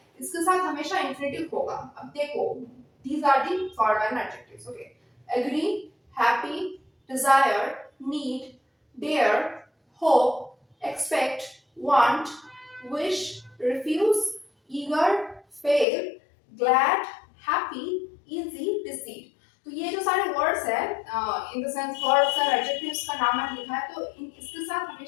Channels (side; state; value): right; drops out; at 15.9 s